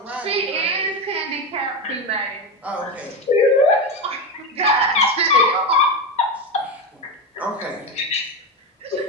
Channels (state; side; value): normal; both; correlation 0.16